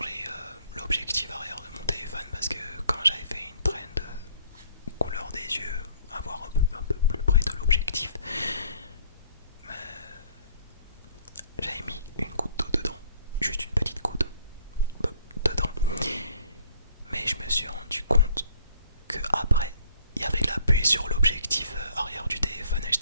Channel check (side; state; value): both; inverted; correlation -0.59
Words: l'objectif arrière de mon téléphone parce que quand j'avais fait une trend couleur des yeux, avoir un peu plus près de l'objectif, j'avais mis une goutte d'eau dedans, juste une petite goutte dedans, mais je me suis rendu compte que après il y avait de la buée sur l'objectif arrière du téléphone et